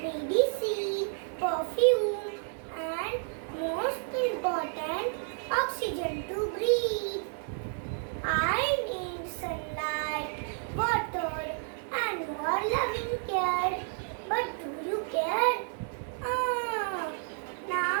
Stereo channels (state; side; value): silent; left; 57 dB below the other